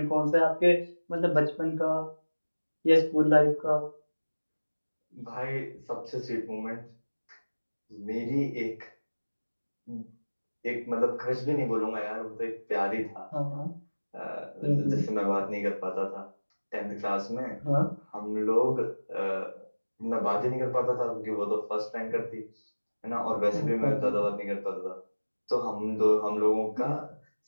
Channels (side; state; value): both; inverted; correlation -1.00